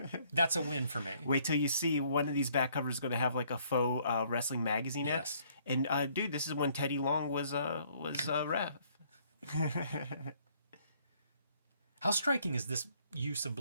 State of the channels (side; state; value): both; inverted; correlation -0.64